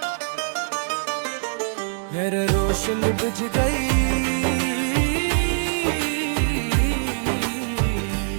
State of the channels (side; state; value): left; silent; digital silence